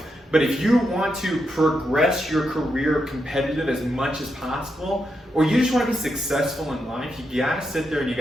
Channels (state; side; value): normal; both; correlation 0.84